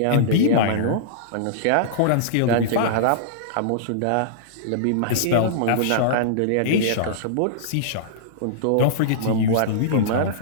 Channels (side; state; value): both; different; correlation -0.03